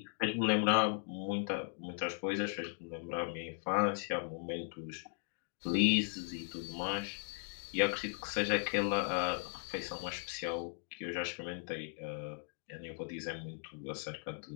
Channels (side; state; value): right; silent; 53 dB below the other